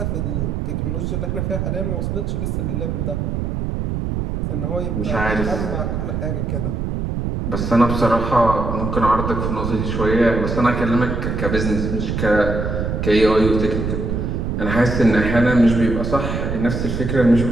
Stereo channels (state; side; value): noise; right; rumble, 2 dB below the sound